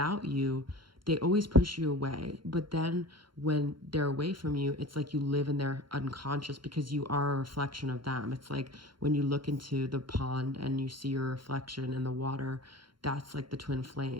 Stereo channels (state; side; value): late; left; 0.73 ms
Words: you, they always push you away. But then when they're away from you, it's like you live in their unconscious because you are a reflection of them. It's like when you look into the pond and you see your reflection in the water, that's like the twin